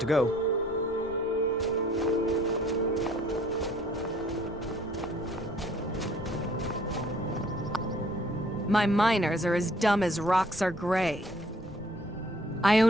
to go. My miners are as dumb as rocks are gray. I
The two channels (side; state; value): right; noise; rumble, 19 dB below the sound